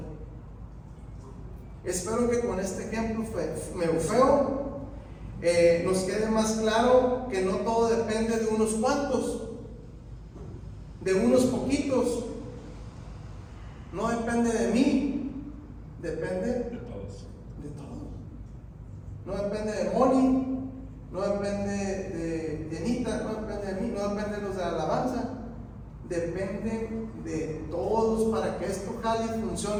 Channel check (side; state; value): both; identical; correlation 1.00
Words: Espero que con este ejemplo feo nos quede más claro que no todo depende de unos cuantos, de unos poquitos. No depende de mí. Depende de todos. No depende de Moni, no depende de Anita, no depende de mí, no depende de los de la alabanza. Depende de todos para que esto jale y